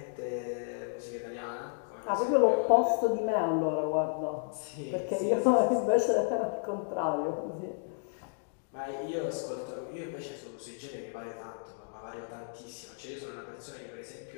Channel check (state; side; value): silent; right; digital silence